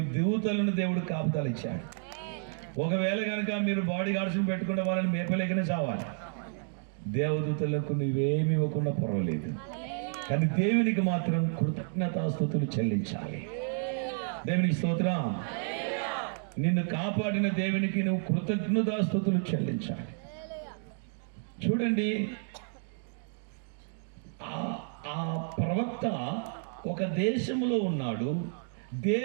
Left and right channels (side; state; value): left; silent; 57 dB below the other